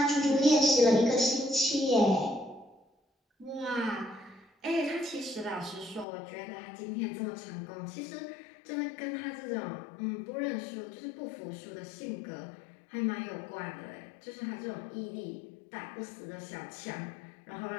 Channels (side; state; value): right; drops out; at 6.1 s